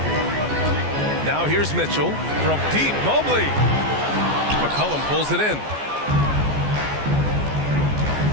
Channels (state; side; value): late; left; 14 ms